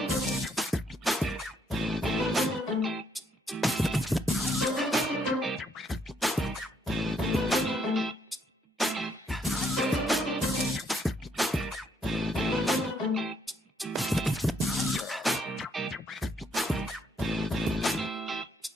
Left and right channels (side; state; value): both; normal; correlation 0.71